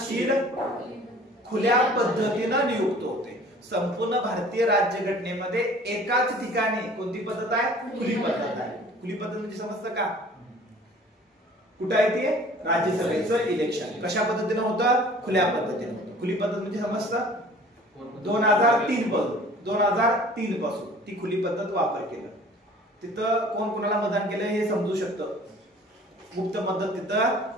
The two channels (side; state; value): both; normal; correlation 0.49